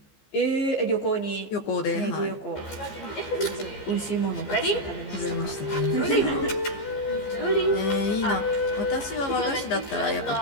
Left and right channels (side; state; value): right; late; 15 ms